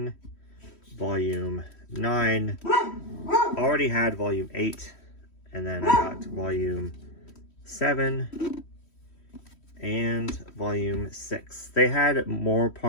volume 9, already had volume 8, and then I got volume 7 and volume 6. They had more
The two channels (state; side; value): late; right; 3.1 ms